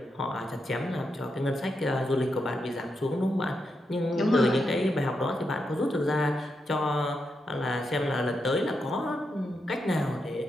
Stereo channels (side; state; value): both; normal; correlation 0.84